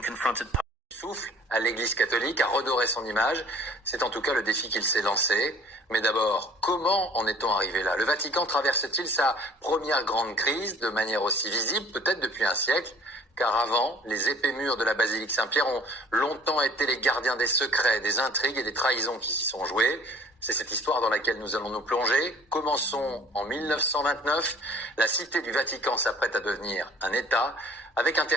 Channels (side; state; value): both; normal; correlation 0.51